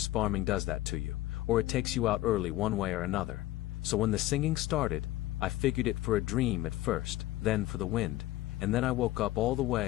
farming does that to you, or it takes you out early one way or another. So when the singing started, I figured it for a dream at first, then for the wind, and then I woke up all the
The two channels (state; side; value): quieter; right; 16.1 dB